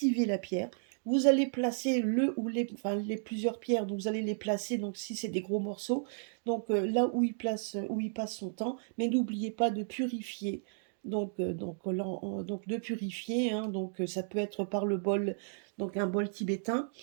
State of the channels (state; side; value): silent; left; digital silence